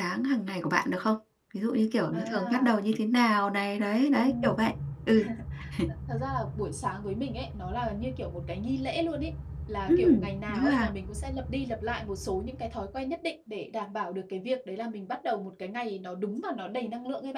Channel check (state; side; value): identical; both; correlation 1.00